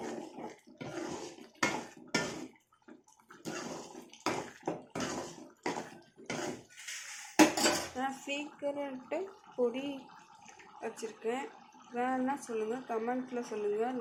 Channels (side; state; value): both; identical; correlation 1.00